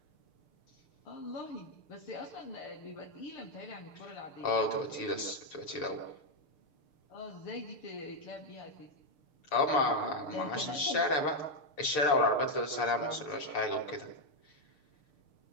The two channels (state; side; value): late; right; 6.7 ms